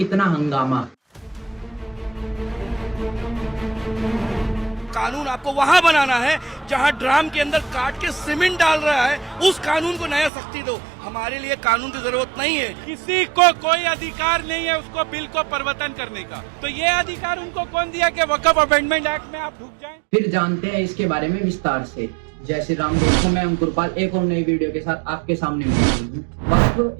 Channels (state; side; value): drops out; left; at 10.3 s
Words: हंगामा? कानून आपको वहां बनाना है जहां ड्राम के अंदर काट के सीमेंट डाल रहा है, उस कानून को नया सख्ती दो। हमारे लिए कानून की जरूरत नहीं है। किसी को कोई अधिकार नहीं है उसको बिल को परिवर्तन करने का। तो ये अधिकार उनको कौन दिया कि वक्फ अमेंडमेंट एक्ट में आप ढुक जाएं? फिर जानते हैं इसके बारे में विस्तार से। जय श्री राम दोस्तों, मैं अंकुरपाल एक और नई वीडियो के साथ आपके सामने मौजूद हूँ।